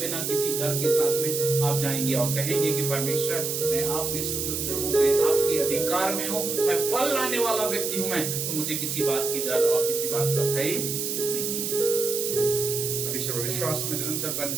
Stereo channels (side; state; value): right; noise; hiss, 2 dB below the sound